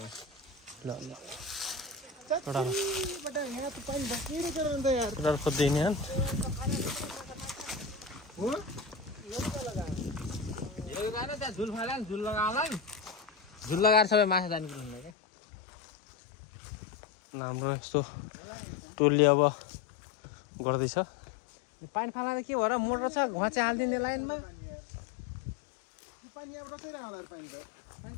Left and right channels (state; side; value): drops out; right; at 15.1 s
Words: ल ल बटा यहाँ त पानी बकिरै छ नि त यार केटाहरु खोज्दै नि हन हो यो गाना त्यहाँ झुल फाला नि झुल लगाउला नि झुल लगाएर सबै माछा जाने कुरा हुन्छ के हाम्रो यस्तो टोलले अब गर्दैछ पानी फाला के भएर मोटर छ घचे हाल्दिने लाइनमा पानी अब बसिरहेको होला पानी त